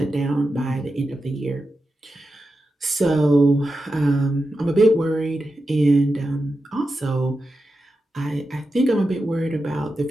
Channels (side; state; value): both; normal; correlation 0.90